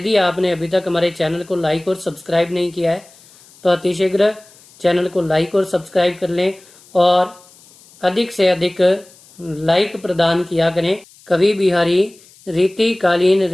आपने अभी तक हमारे चैनल को लाइक और सब्सक्राइब नहीं किया है तो अतिशीघ्र चैनल को लाइक और सब्सक्राइब कर लें और अधिक से अधिक लाइक प्रदान किया करें। कवि बिहारी रीतिकालीन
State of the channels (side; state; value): left; noise; hiss, 26 dB below the sound